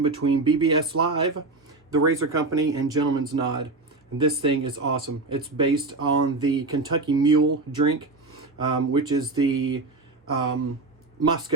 between BBS.Live, the Razor Company, and Gentleman's Nod. And this thing is awesome. It's based on the Kentucky Mule drink, which is the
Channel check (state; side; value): quieter; left; 3.4 dB